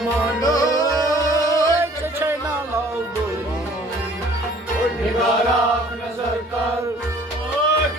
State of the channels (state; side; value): normal; both; correlation 0.53